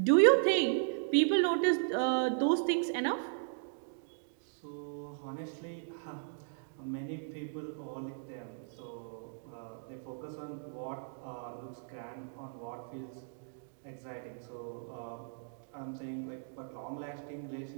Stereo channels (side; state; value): left; silent; digital silence